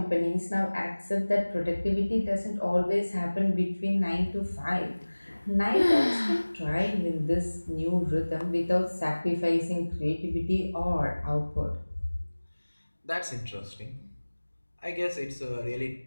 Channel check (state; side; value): inverted; both; correlation -1.00